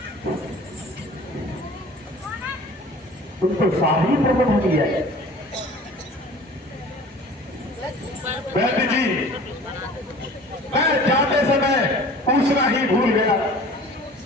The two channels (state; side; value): normal; both; correlation 0.45